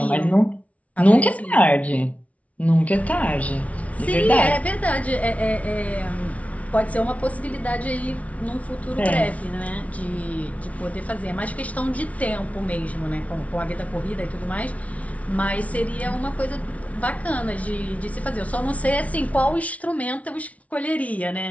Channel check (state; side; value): late; right; 0.067 ms